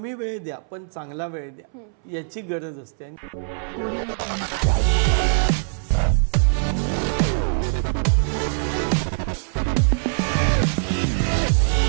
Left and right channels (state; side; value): silent; left; 64 dB below the other